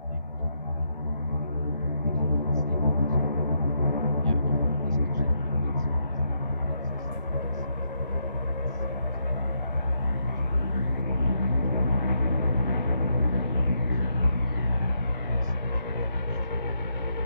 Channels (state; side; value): inverted; both; correlation -0.78